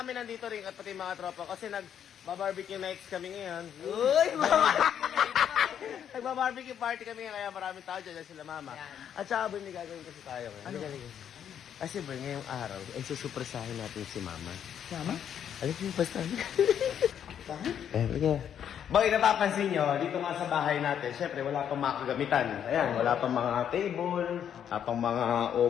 nandito rin at pati mga tropa kasi nag-barbecue nights kami ngayon. Uy, mama! Nagba-barbecue party kami ngayon kaya maraming tao dyan sila mama. At saka boy, may gagawin kasi tayo ngayon. Ano? Kasi boy, ngayong araw, ay susupresahin natin si mama. Mama? Alam mo yung basta? Bakit? Okay. Boy, napapansin nyo, dito nga sa bahay natin, syempre wala pang mga kagamitan. Ayan, wala pang mga table, wala pang mga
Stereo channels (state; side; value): quieter; right; 9.0 dB